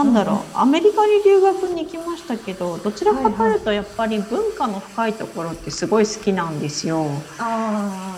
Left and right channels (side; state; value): both; identical; correlation 1.00